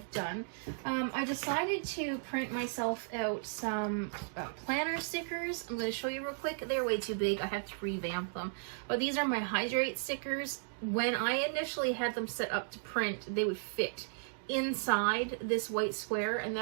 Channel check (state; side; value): silent; left; digital silence